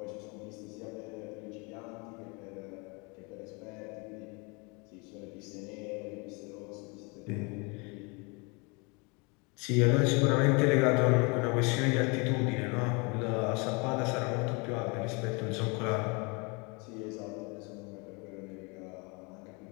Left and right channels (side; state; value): right; quieter; 30.3 dB